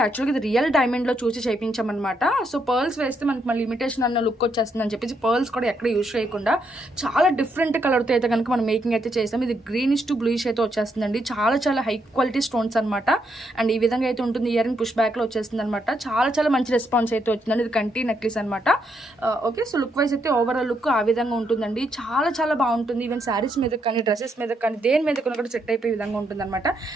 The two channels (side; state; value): both; normal; correlation 0.77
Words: ఇది రియల్ డైమండ్లో చూసి చేయించామన్నమాట. సో పర్ల్స్ వేస్తే మనకి మళ్ళీ లిమిటేషన్ అన్న లుక్ వచ్చేస్తుంది అని చెప్పేసి పర్ల్స్ కూడా ఎక్కడ యూజ్ చేయకుండా చాలా డిఫరెంట్ కలర్తో అయితే కనుక మనం మేకింగ్ అయితే చేస్తాం. ఇది గ్రీనిష్ టు బ్లూయిష్ అయితే వచ్చేస్తుందండి. చాలా హై క్వాలిటీ స్టోన్స్ అనమాట. అండ్ ఈ విధంగా అయితే ఉంటుంది. ఇయర్ రింగ్ పుష్ బ్యాక్లో వచ్చేస్తుంది అనమాట. చాలా మంచి రెస్పాన్స్ అయితే వచ్చిందండి. ఇది కంటి నెక్లెస్ అనమాట. ఓకే, సో లుక్ వైజ్ అయితే ఓవరాల్ లుక్ ఆ విధంగా ఉంటుందండి. చాలా బాగుంటుంది. ఈవెన్ శారీస్ మీద కానీ డ్రెస్సెస్ మీద కానీ దేని మీద కూడా సెట్ అయిపోయే విధంగా ఉంటుంది అనమాట.